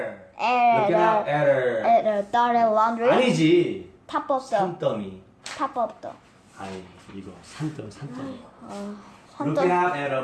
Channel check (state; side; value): identical; both; correlation 1.00